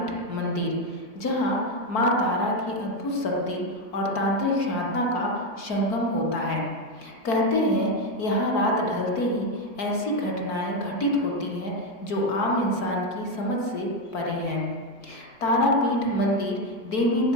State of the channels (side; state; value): right; late; 4.5 ms